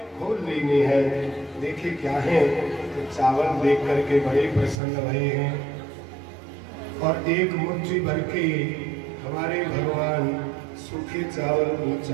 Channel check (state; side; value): drops out; left; at 4.8 s